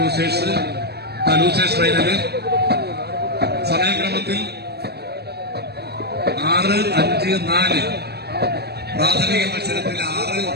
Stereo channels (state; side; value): late; left; 0.47 ms